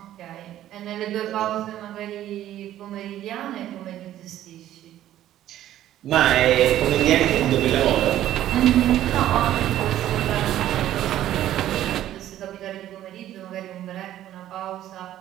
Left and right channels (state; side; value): quieter; left; 12.7 dB